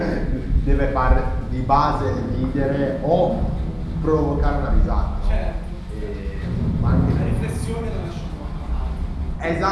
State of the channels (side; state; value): both; identical; correlation 1.00